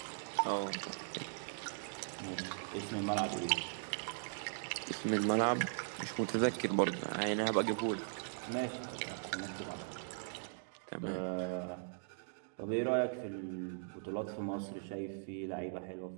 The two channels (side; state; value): left; silent; digital silence